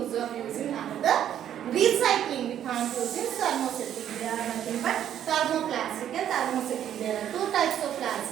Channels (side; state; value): left; quieter; 10.4 dB